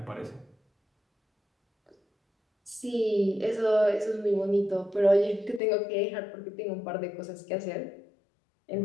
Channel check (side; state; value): right; drops out; at 5.6 s